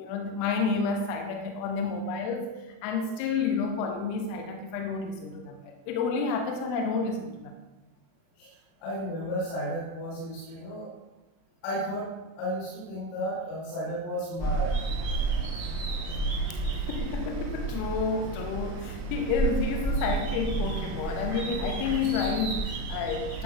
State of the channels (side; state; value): right; late; 36 ms